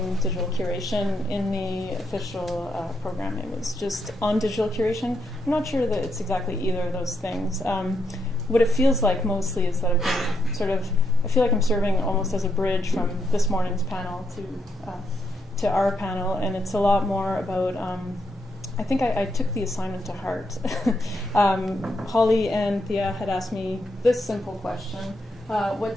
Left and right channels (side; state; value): both; normal; correlation 0.79